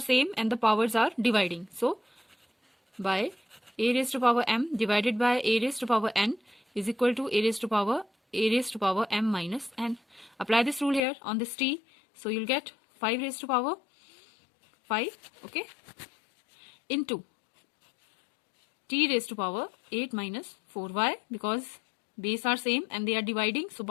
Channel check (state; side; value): drops out; right; at 11.1 s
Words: and the powers are dividing. So by a raised to power m divided by a raised to power n is equal to a raised to power m minus n. Apply this rule here on this t, so you'll get 5 raised to power 5, okay, into t raised to power 8 minus 4. Why? Because base are same and they are dividing, so